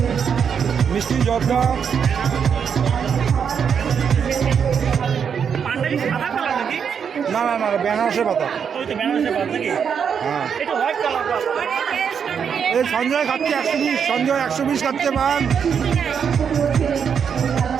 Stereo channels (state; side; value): quieter; left; 7.1 dB